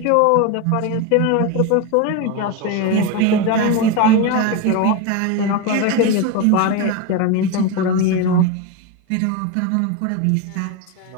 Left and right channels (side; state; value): both; different; correlation 0.03